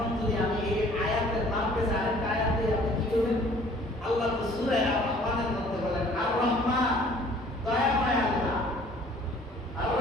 যদি আমি এই আয়াতের নাম পেয়েছি আরেকটা আয়াত দিয়ে আপনি কি করবেন? আল্লাহ তো সূরা আর-রহমানের মধ্যে বলেন আর-রহমান দয়াময় আল্লাহ,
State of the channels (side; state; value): both; normal; correlation 0.54